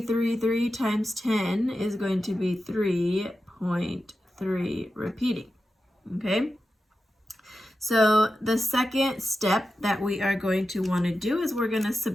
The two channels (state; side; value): normal; both; correlation 0.91